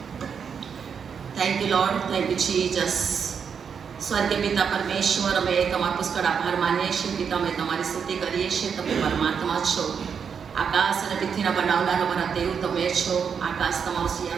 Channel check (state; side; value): quieter; left; 6.8 dB